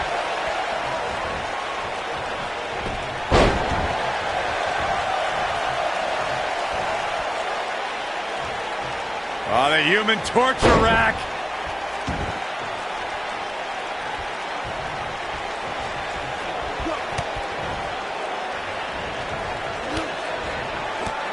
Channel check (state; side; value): identical; both; correlation 1.00